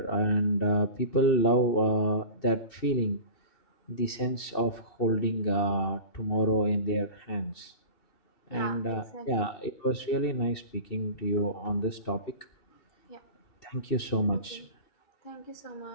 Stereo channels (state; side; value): late; right; 2.7 ms